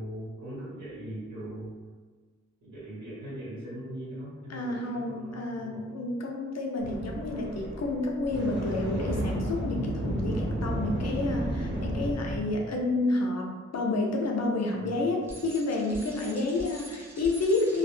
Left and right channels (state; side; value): normal; both; correlation 0.52